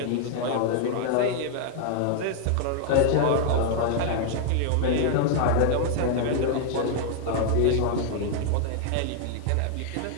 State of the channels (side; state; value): both; different; correlation 0.00